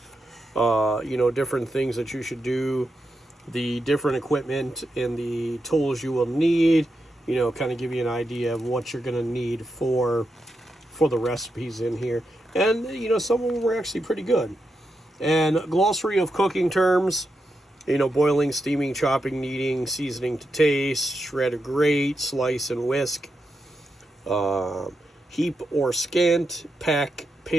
different things that you should do, the different equipment and the tools you will need, kind of give you an idea of what you're going to need for the recipes in here. And, some of them were actually pretty good. And a glossary of cooking terms. Boiling, steaming, chopping, kneading, seasoning to taste, shred or grate, slice and whisk, heap or scant, pack,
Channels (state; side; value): normal; both; correlation 0.86